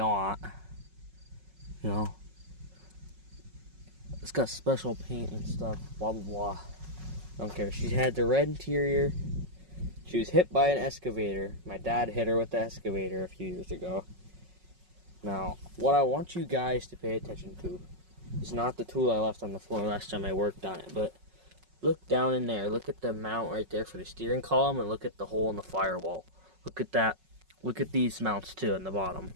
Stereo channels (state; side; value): late; left; 5.4 ms